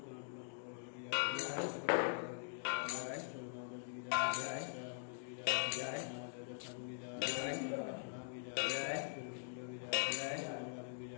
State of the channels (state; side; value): silent; right; digital silence